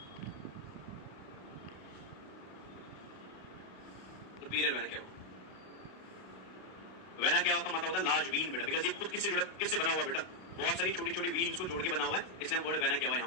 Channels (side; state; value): right; late; 32 ms